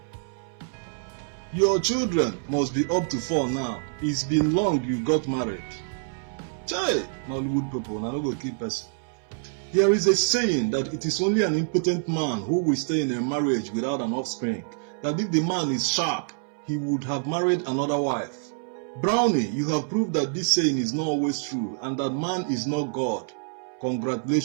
Your children must be up to 4 now. It's been long you got married. Chai, Nollywood people, now no go keep person. There is a saying that it is only an impotent man who will stay in a marriage without an offspring. That if the man is sharp, he would have married another wife. Brownie, you have proved that this saying is not always true and that man is not God.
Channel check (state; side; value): silent; left; 61 dB below the other